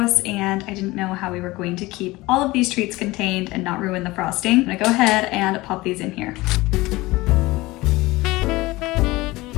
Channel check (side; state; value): right; quieter; 20.4 dB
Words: and I didn't know how we were going to keep all of these treats contained and not ruin the frosting. I'm gonna go ahead and pop these in here.